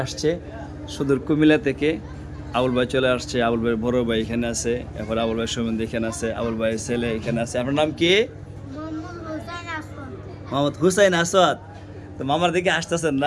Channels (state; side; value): identical; both; correlation 1.00